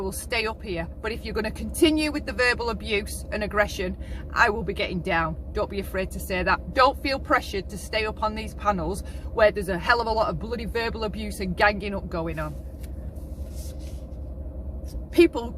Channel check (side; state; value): both; identical; correlation 1.00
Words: stay up here. But if you're going to continue with the verbal abuse and aggression, I will be getting down. Don't be afraid to say that. Don't feel pressured to stay up on these panels where there's a hell of a lot of bloody verbal abuse and ganging up going on. People